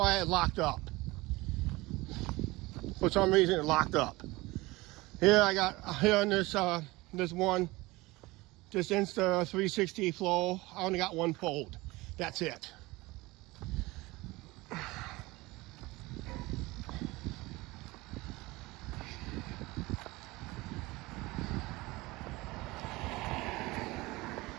it locked up. For some reason it locked up. Here I got, here on this one, this Insta360 Flow, I only got 1 fold. That's it.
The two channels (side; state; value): left; quieter; 21.4 dB